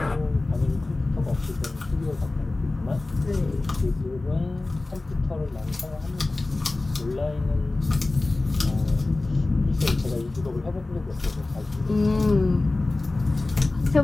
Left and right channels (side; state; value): right; quieter; 3.1 dB